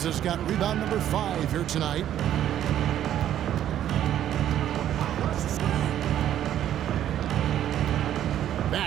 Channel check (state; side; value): quieter; left; 11.2 dB